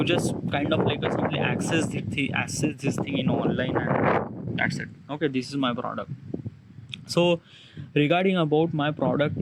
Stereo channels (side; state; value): both; identical; correlation 1.00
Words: just kind of like a simply access this thing in online, and that's it. Okay, this is my product. So regarding about my product